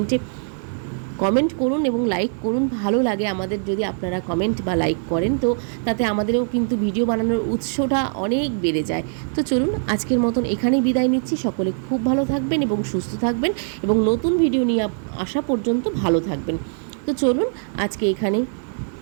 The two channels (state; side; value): silent; left; digital silence